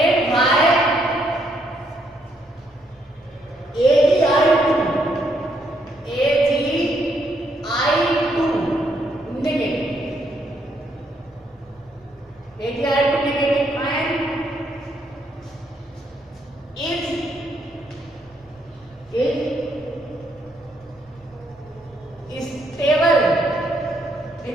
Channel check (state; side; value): normal; both; correlation 0.74